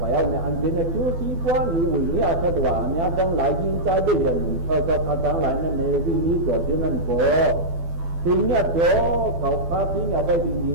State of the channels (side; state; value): left; late; 12 ms